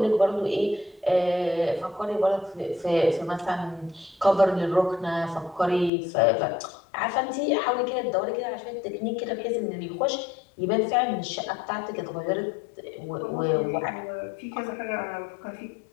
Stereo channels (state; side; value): drops out; right; at 5.9 s